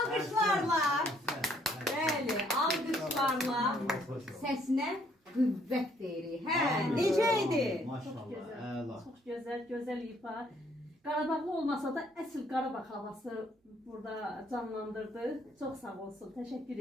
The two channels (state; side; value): normal; both; correlation 0.66